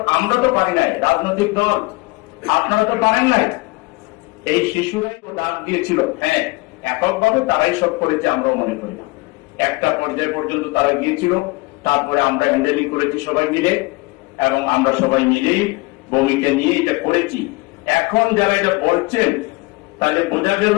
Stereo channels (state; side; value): quieter; right; 24.2 dB